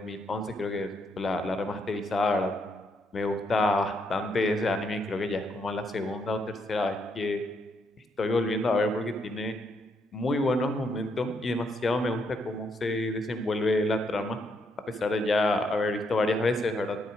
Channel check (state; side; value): normal; both; correlation 0.75